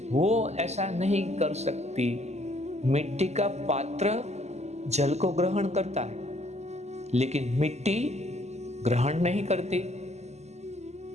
वो ऐसा नहीं कर सकती। मिट्टी का पात्र जल को ग्रहण करता है, लेकिन मिट्टी ग्रहण नहीं करती।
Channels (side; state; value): left; late; 0.32 ms